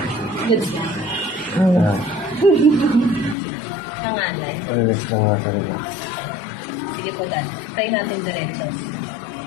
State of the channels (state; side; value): drops out; right; at 3.4 s